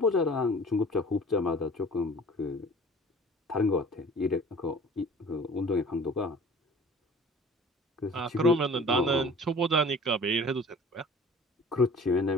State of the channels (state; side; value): normal; both; correlation 0.46